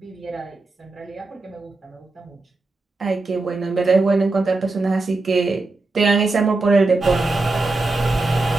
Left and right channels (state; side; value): quieter; left; 3.3 dB